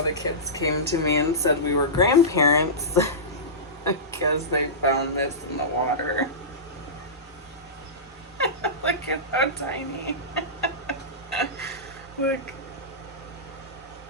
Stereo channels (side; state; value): both; normal; correlation -0.18